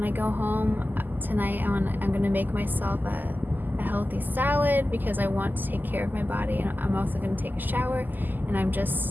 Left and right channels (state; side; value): late; left; 0.087 ms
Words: I go home tonight, I'm gonna make myself a healthy salad, because I want to take care of my body, and I'm also gonna take a shower, and I'm